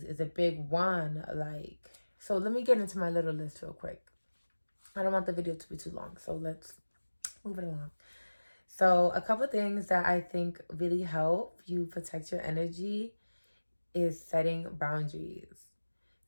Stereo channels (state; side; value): inverted; both; correlation -1.00